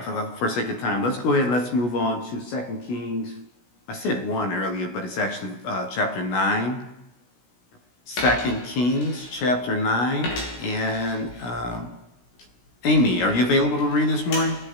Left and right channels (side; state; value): right; late; 16 ms